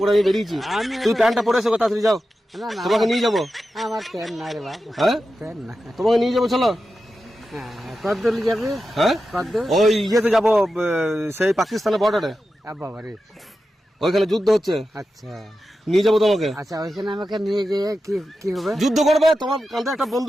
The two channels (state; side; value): normal; both; correlation 0.91